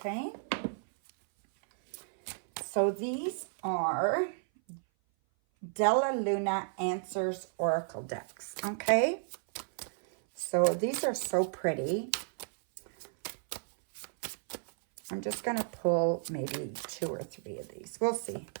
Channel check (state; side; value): silent; left; 56 dB below the other